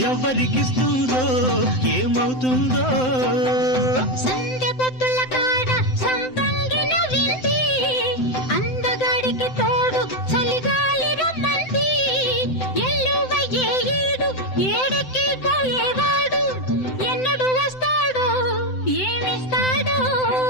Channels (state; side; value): late; right; 7.8 ms